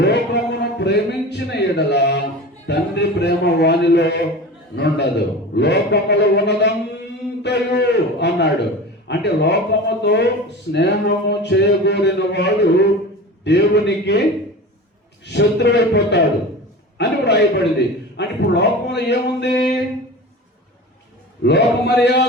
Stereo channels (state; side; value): normal; both; correlation 0.33